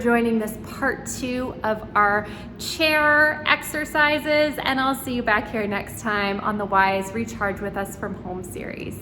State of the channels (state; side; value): identical; both; correlation 1.00